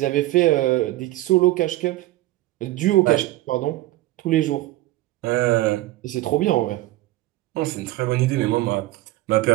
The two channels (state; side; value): quieter; left; 17.2 dB